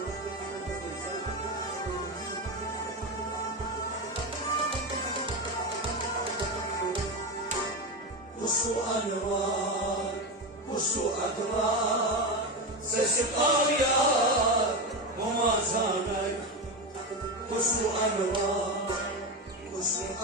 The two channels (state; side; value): normal; both; correlation 0.16